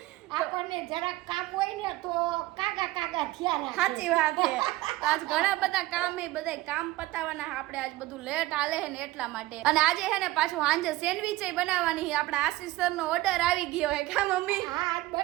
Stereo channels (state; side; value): quieter; left; 18.1 dB